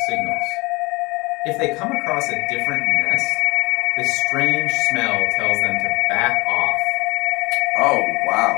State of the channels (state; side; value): quieter; right; 24.7 dB